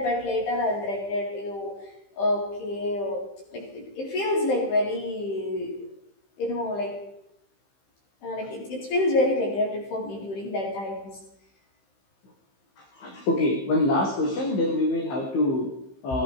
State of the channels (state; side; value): late; right; 15 ms